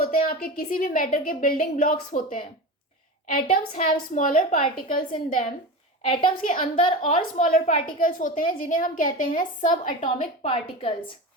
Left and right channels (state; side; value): normal; both; correlation 0.26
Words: हैं आपके किसी भी मैटर के बिल्डिंग ब्लॉक्स होते हैं। Atoms have smaller particles in them. Atoms के अंदर और स्मॉलर पार्टिकल्स होते हैं जिन्हें हम कहते हैं सब एटॉमिक पार्टिकल्स।